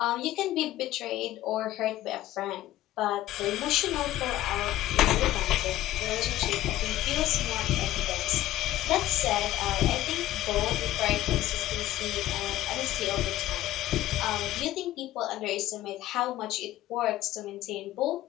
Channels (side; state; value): right; quieter; 14.6 dB